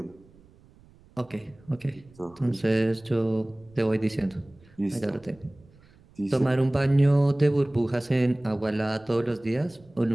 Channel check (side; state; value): right; noise; rumble, 27 dB below the sound